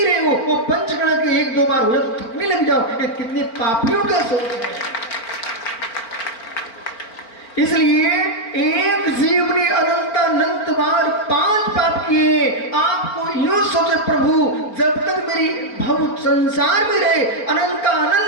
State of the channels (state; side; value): late; right; 4.5 ms